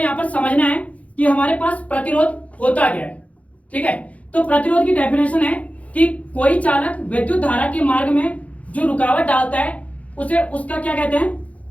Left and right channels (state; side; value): late; right; 0.066 ms